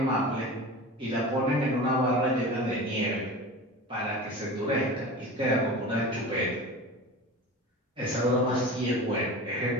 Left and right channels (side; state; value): both; normal; correlation 0.33